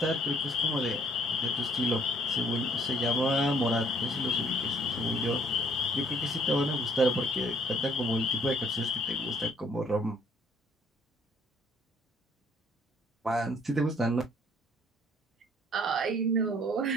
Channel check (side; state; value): both; normal; correlation 0.61